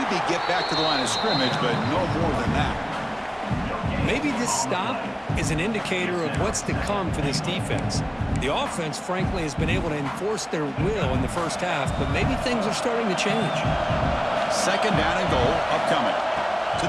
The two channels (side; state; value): both; identical; correlation 1.00